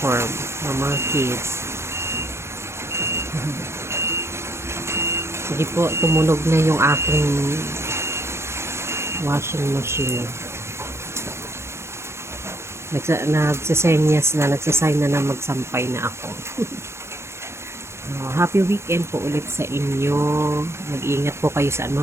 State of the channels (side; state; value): left; late; 0.13 ms